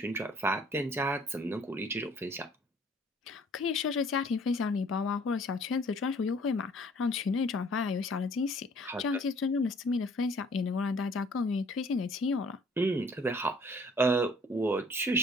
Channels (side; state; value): both; normal; correlation 0.56